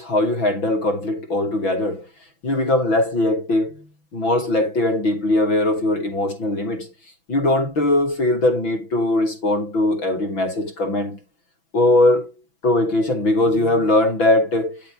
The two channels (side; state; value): right; late; 6.0 ms